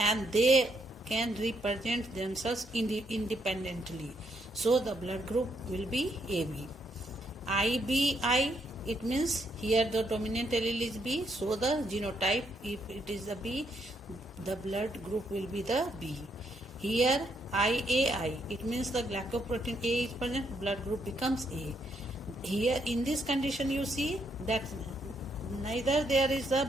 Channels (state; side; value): normal; both; correlation 0.75